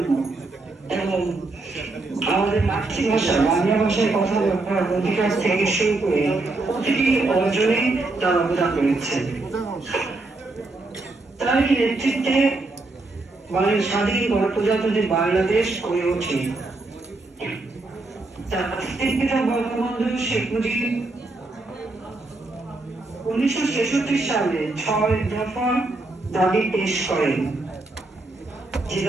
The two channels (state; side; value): quieter; left; 3.2 dB